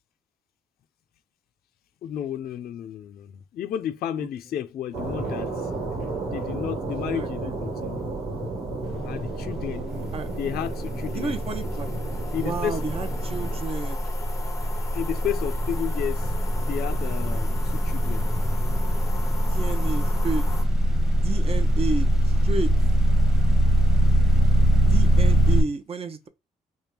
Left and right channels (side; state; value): both; normal; correlation 0.82